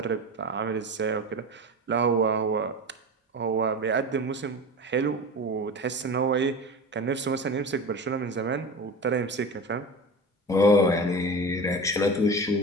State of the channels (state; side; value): normal; both; correlation 0.30